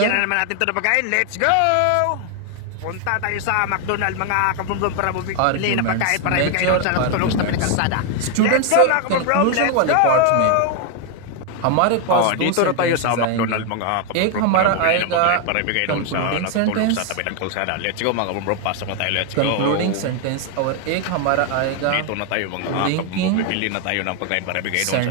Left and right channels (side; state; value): both; different; correlation 0.01